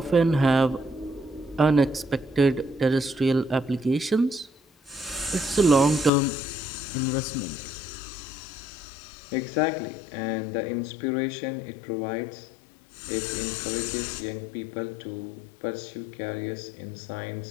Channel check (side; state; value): right; drops out; at 6.1 s